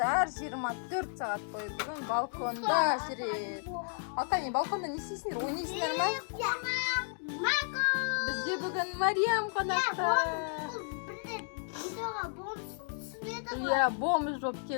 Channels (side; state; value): right; silent; 55 dB below the other